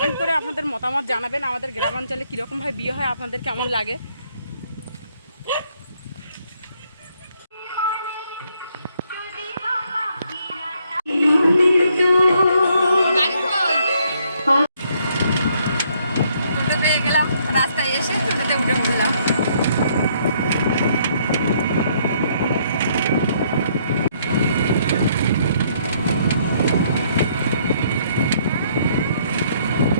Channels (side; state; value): both; inverted; correlation -0.68